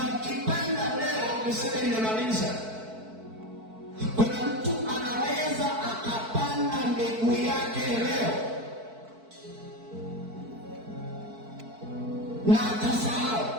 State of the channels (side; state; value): left; late; 4.5 ms